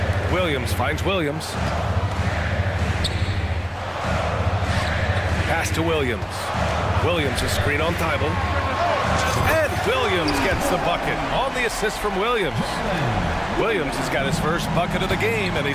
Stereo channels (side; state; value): both; identical; correlation 1.00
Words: Williams finds Williams. Pass to Williams. Williams a screen on Thibault. And Williams gets the bucket on the assist from Williams. Williams has got his first bucket of the game, and